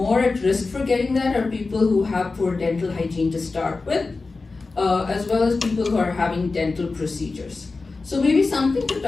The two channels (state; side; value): quieter; right; 3.8 dB